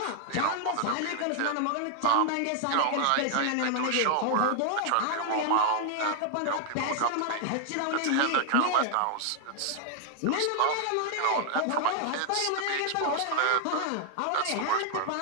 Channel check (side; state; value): both; different; correlation 0.00